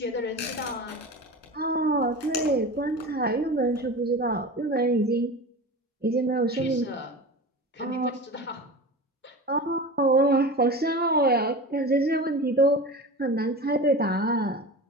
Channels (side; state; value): both; normal; correlation 0.31